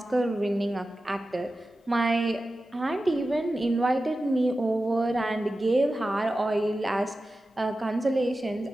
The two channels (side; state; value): both; normal; correlation 0.94